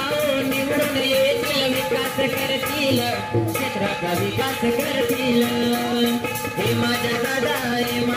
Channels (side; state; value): both; identical; correlation 1.00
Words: निवडून येतील, विकास करतील, क्षेत्राचा विकास करतील. हे माझ्या दादा, हे